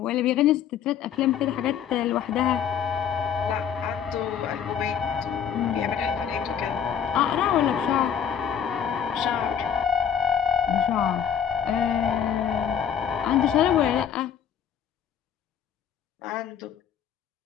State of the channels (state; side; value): quieter; right; 8.4 dB